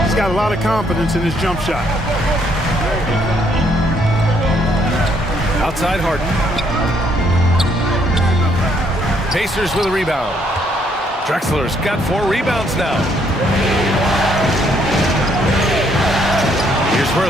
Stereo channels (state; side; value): normal; both; correlation 0.69